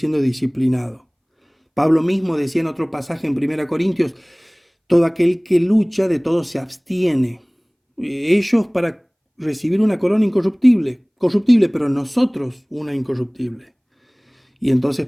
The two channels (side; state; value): both; identical; correlation 1.00